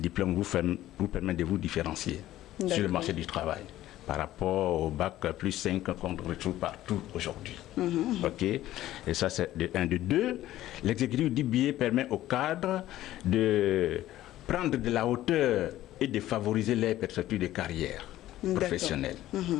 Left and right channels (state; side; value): quieter; right; 14.4 dB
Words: vous permet de vous différencier sur le marché du travail par rapport au bac plus 5 qu'on retrouve partout aujourd'hui. Et ça, c'est de 1. De 2, l'exécutif d'IBA permet aux cadres de prendre de la hauteur et de favoriser les perspectives de carrière professionnelle.